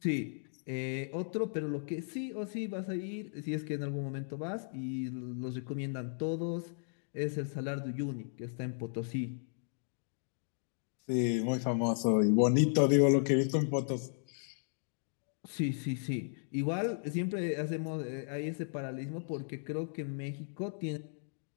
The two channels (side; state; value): right; silent; digital silence